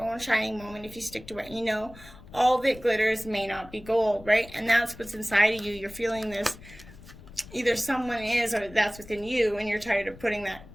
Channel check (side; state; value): left; noise; rumble, 19 dB below the sound